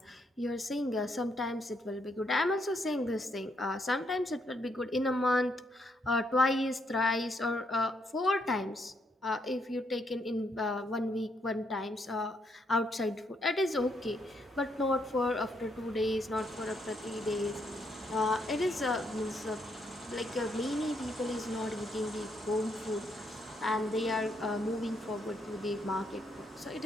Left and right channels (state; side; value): normal; both; correlation 0.75